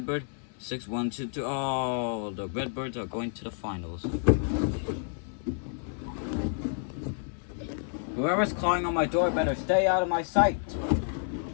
6, 1, 2, 3. Oh, the Redbirds are going to the finals. Whoever's clawing on my door better stay out of my sight.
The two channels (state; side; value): silent; right; digital silence